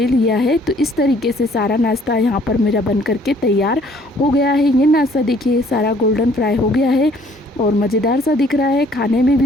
लिया है। तो इस तरीके से सारा नाश्ता यहाँ पर मेरा बन करके तैयार हो गया है। ये नाश्ता देखिए सारा गोल्डन फ्राई हो गया है और मज़ेदार सा दिख रहा है, खाने में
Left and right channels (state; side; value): normal; both; correlation 0.59